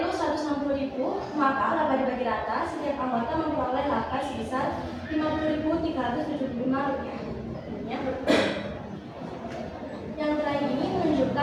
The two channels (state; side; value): identical; both; correlation 1.00